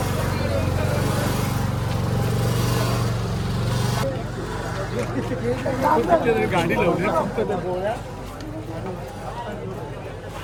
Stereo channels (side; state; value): both; identical; correlation 1.00